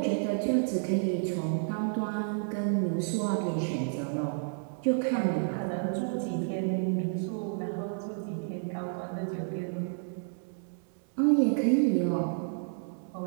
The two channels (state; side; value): silent; left; digital silence